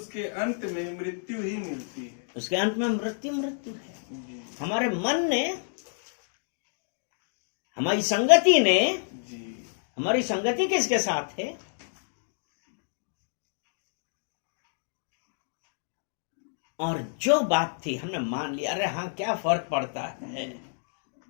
अंत में मृत्यु ही मिलती है। उसके अंत में मृत्यु है। हमारे मन ने, हमारी संगति किसके साथ है? और जो बात थी हमने मान लिया, अरे हाँ क्या फर्क पड़ता है,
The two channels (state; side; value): silent; right; digital silence